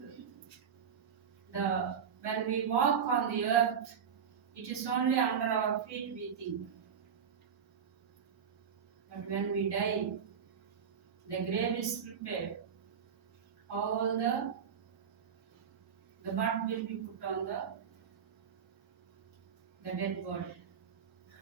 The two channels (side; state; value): left; quieter; 7.3 dB